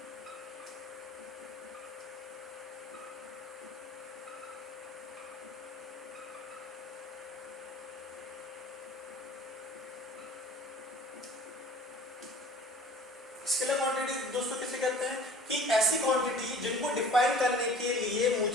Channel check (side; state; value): both; normal; correlation 0.47